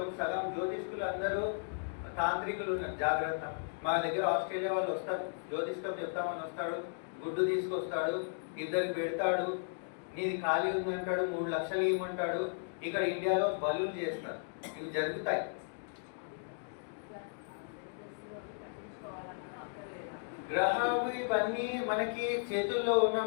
సగం జ్యోతిష్కులు అందరూ తాంత్రికులు ఉన్నారు, జాగ్రత్త. మా దగ్గర ఆస్ట్రేలియా వాళ్ళు వస్తారు, జ్యోతిష్కం చెప్తామని వస్తాడు, గుడ్డు తీసుకొస్తాడు, ఇద్దరికి పెడతాడు, నీది ఖాళీ ఉందంటాడు, 3 లక్షలు ఇవ్వమంటాడు. ఇక్కడ ఇండియాలో బలులు చేస్తారు, ఇవి జరుగుతాయి. గ్రహాలు ఇవన్నీ మనకి చేతుల్లో ఉన్న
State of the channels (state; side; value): silent; right; digital silence